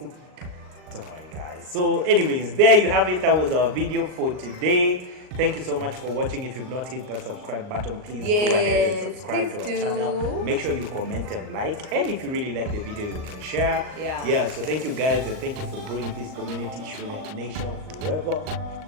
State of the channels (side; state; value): left; late; 39 ms